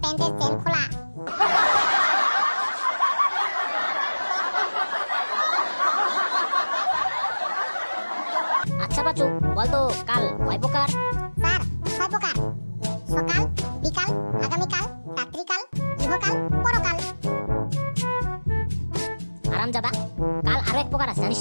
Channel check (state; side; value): inverted; both; correlation -1.00